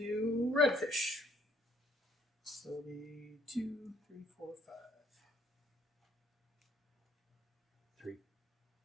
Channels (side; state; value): both; normal; correlation 0.65